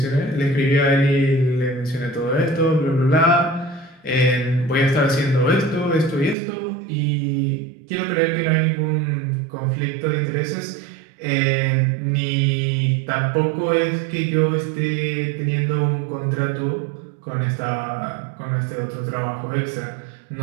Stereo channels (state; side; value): drops out; left; at 6.4 s